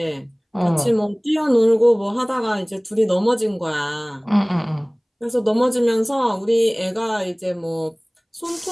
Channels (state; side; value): identical; both; correlation 1.00